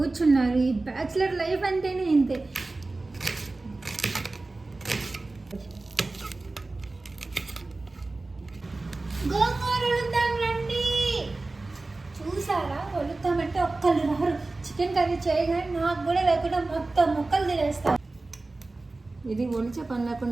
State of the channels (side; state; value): left; quieter; 3.3 dB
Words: ఈ బ్యాచులర్ లైఫ్ అంటేనే ఇంతే. గోంగూర వలుద్దాం రండి. చూసారా, వలుద్దామంటే ఒక్కళ్ళు రారు. చికెన్ కర్రీ చేయగానే నాకు కూడా లేకుండా మొత్తం ముక్కలు తినేస్తాను. ఇది ఒలిచే పని